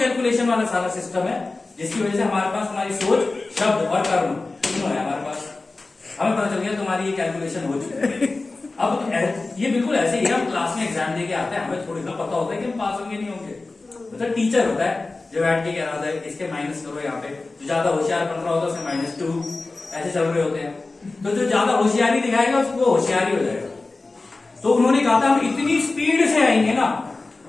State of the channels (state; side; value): quieter; right; 3.4 dB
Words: वाला सारा सिस्टम है जिसकी वजह से हमारे पास तुम्हारी सोच, शब्द और कर्म तीनों है हमारे पास। हमें पता चल गया तुम्हारी ये कैलकुलेशन हो चुकी है। अब ये बिल्कुल ऐसे ही है, हम क्लास में एग्जाम देके आते हैं, हमें थोड़ी सा पता होता है कि हम पास होंगे नहीं होंगे। मतलब टीचर होता है जो बैठ के कह रहा होता है इसके माइनस करो, यहाँ पे जो ज्यादा होशियार बन रहा होता है उसके -2 ऐसे चल रहे होते हैं। तो जो ज्यादा होशियारी दिखाएगा उसको होशियारी हो जाएगा। तो उन्होंने कहा था हम इतनी स्पीड से आएंगे ना,